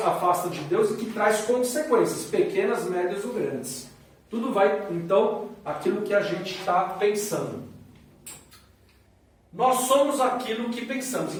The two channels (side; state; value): both; identical; correlation 1.00